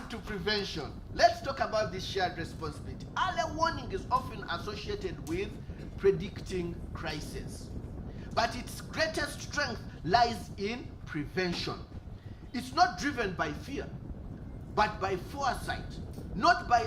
to prevention, let's talk about this shared responsibility. Early warning is often associated with predicting crisis, but its greatest strength lies in prevention. It's not driven by fear, but by foresight, not by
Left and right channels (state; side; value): identical; both; correlation 1.00